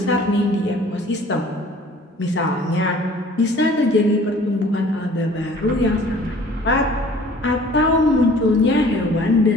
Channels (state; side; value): normal; both; correlation 0.51